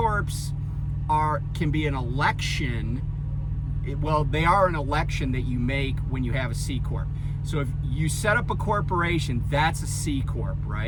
can be an election. They are an election that you make when you have a C Corp. So if you set up a corporation, that's a C Corp,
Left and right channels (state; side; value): identical; both; correlation 1.00